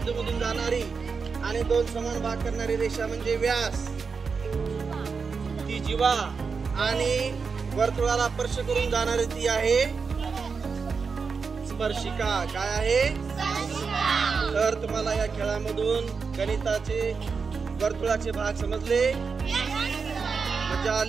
मधून जाणारी आणि दोन समान भाग करणारी रेषा म्हणजे व्यास, ती जीवा. आणि वर्तुळाला स्पर्श करून जाणारी ती आहे स्पर्शिका. काय आहे? तर तुम्हाला या खेळामधून गणिताचे वर्तुळाचे भाग समजले? मजा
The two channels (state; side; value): quieter; left; 5.2 dB